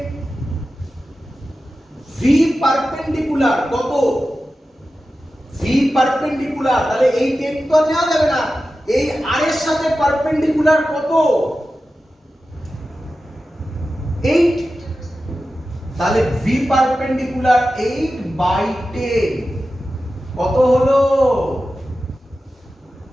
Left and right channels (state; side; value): normal; both; correlation 0.93